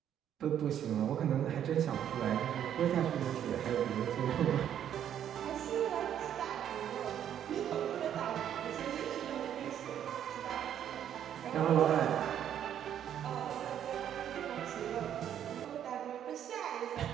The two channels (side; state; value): left; quieter; 9.9 dB